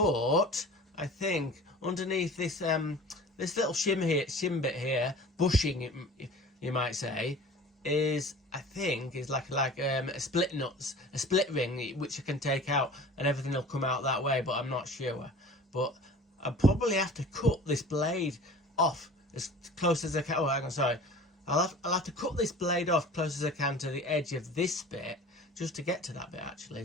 I think underneath this this little shim bit here, bushing you might say, is like a split ring which I can take out, and everything will come out that way, but I'm not sure. But I'll probably have to cut this blade off as close as I can. Oh, hang on, sorry. I'll have to cut this blade off close as I can to the edge of this bit, just to get to that bit actually.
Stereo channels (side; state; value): both; normal; correlation 0.42